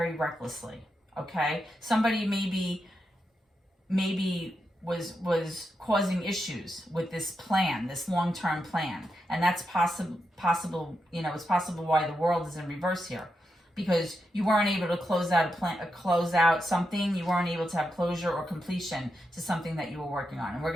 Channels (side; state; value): both; normal; correlation 0.86